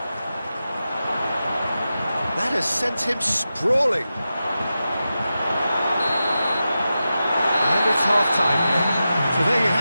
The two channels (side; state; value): both; inverted; correlation -0.92